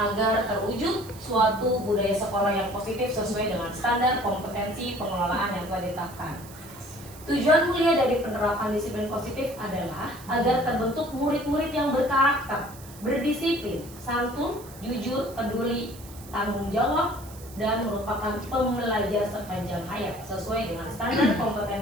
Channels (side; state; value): right; noise; hiss, 19 dB below the sound